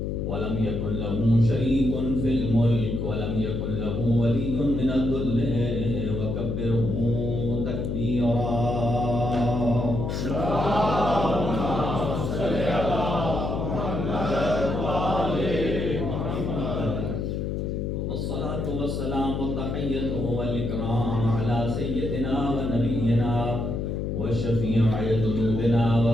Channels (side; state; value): left; noise; hum, 2 dB below the sound